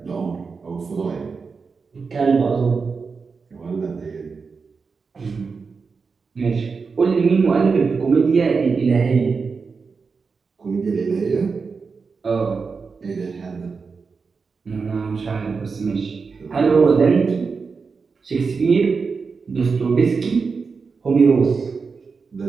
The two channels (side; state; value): left; quieter; 5.0 dB